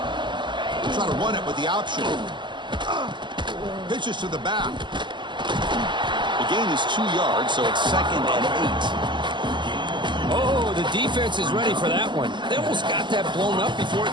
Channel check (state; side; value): late; left; 0.22 ms